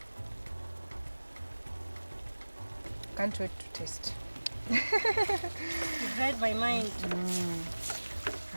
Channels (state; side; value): inverted; both; correlation -1.00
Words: Can't wait to taste. You've read my mind.